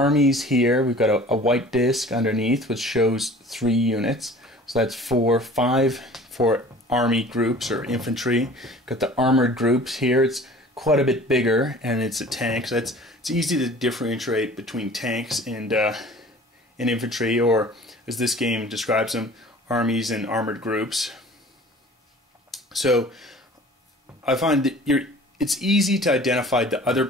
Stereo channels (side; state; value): both; normal; correlation 0.46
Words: here. We've got a white disc underneath, which shows 3 units. So that's 5 for army groups or infantry. Got the armored groups here. It's quite a bit bigger, and it's a tank. So it's easy to differentiate between tanks and infantry, or as this game describes them, armies and armored groups. So I find that it's easy to identify the other